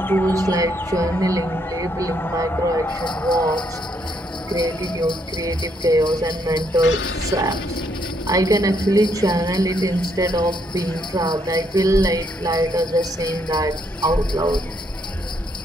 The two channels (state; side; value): normal; both; correlation 0.73